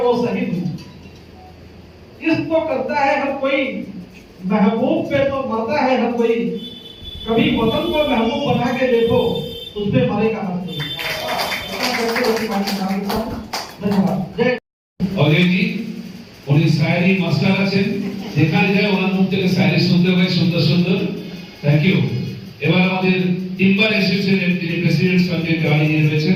वो शहीद हूं। इस तो करता है हर कोई, महबूब पे तो मरता है हर कोई, कभी वतन को महबूब बना के देखो उस पे मरेगा हर कोई। অজয়জি উনি শায়রি মাস্টার আছেন, যেখানে যায় ওনার মুখ থেকে শায়রি শুনতে হয় সুন্দর সুন্দর। Thank you. এবার আমাদের টিম্বার অ্যাসোসিয়েশনের যিনি প্রেসিডেন্ট সঞ্জয় তেওয়ারি জি রয়েছেন,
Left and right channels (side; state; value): both; identical; correlation 1.00